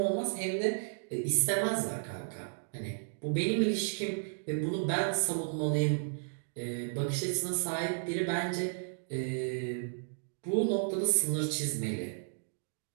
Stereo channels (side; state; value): left; silent; digital silence